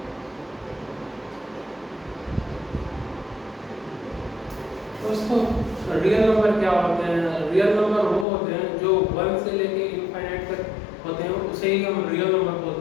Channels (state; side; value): drops out; right; at 8.2 s